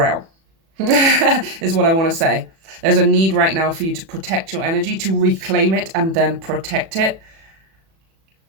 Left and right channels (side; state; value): left; late; 36 ms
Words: is what I want to say. There's a need right now for you to protect your energy, to reclaim it and then protect it.